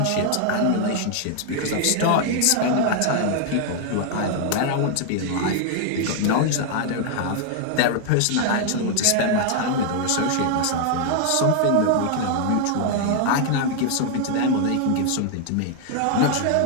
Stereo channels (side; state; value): both; different; correlation 0.00